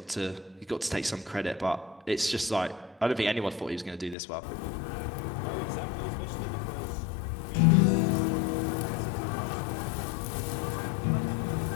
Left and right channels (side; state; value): right; drops out; at 4.2 s